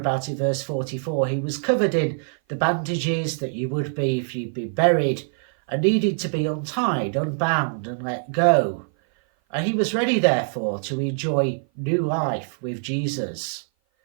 in verse 44, he was covered in the bandages that you would be if you'd been buried, and needed to be untied, unbound, and let go. And he was ready, therefore, to enjoy new life with Jesus.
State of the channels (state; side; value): silent; left; 56 dB below the other